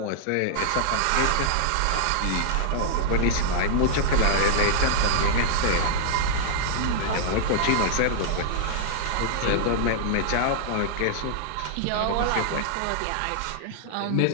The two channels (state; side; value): different; both; correlation -0.01